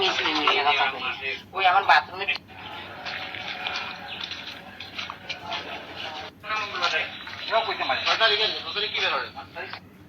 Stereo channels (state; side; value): identical; both; correlation 1.00